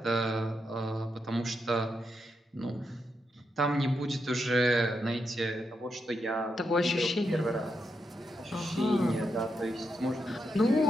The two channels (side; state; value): both; normal; correlation 0.83